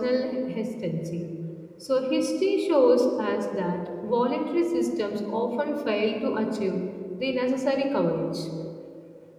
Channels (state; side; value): identical; both; correlation 1.00